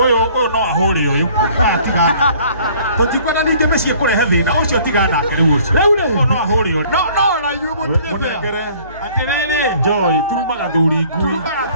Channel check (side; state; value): both; inverted; correlation -0.54